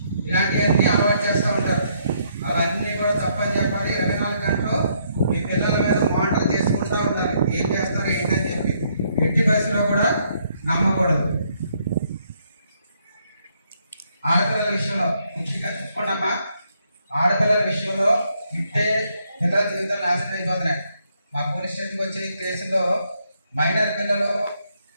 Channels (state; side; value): inverted; both; correlation -0.72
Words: ఇలాంటివన్నీ అలవాటు చేస్తూ ఉంటారు. అవన్నీ కూడా తప్పని చెప్పాలి. 24 గంటలు మీ పిల్లల మీద మానిటర్ చేసుకుంటూ ఉండాలి, ఏం చేస్తారు ఏంటని చెప్పి. ఎట్టి పరిస్థితిలో కూడా నమ్మకూడదు. ఆడపిల్లల విషయంలో ముఖ్యంగా చెప్పుకున్నామా, ఆడపిల్లల విషయంలో ఇట్టే పిల్లల జీవితాలు నాశనం అయిపోతున్నాయి. మా పోలీస్ స్టేషన్కి వచ్చే కేసులో మైనర్ పిల్లలు